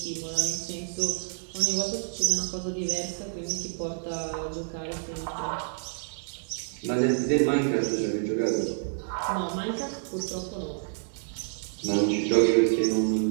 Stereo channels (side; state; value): left; silent; digital silence